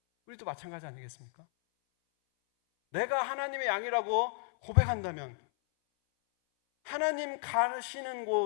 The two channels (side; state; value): right; silent; 56 dB below the other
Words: 우리도 마찬가지 아니겠습니까? 내가 하나님의 양이라고 고백한다면 하나님 가시는